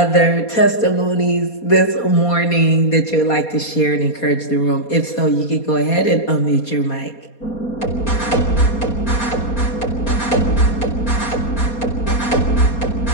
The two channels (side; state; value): right; late; 4.2 ms